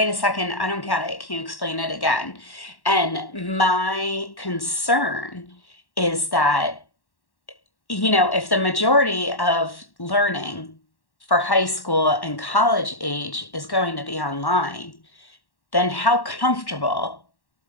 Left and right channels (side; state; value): right; late; 1.1 ms